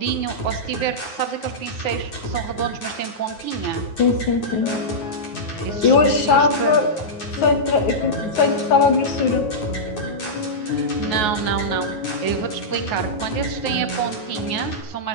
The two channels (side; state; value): right; late; 9.4 ms